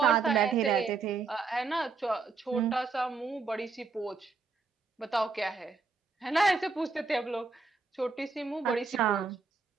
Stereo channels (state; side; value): quieter; left; 4.5 dB